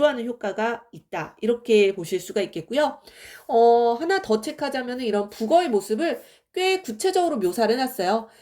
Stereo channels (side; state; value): both; identical; correlation 1.00